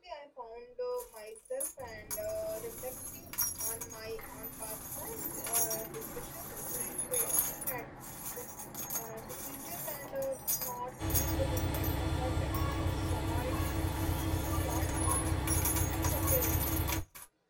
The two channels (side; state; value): both; identical; correlation 1.00